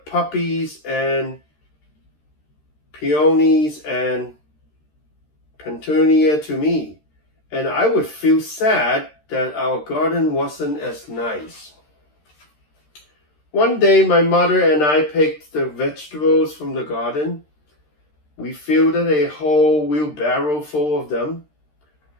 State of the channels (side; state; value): right; late; 13 ms